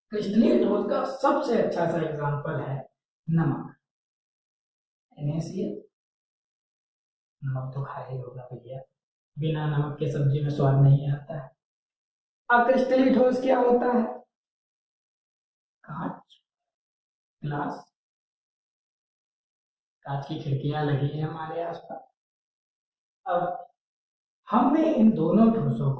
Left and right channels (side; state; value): both; identical; correlation 1.00